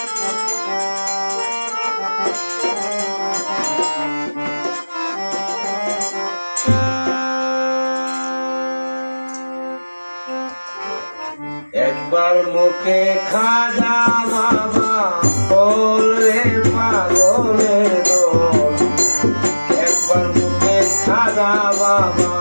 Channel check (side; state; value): both; inverted; correlation -1.00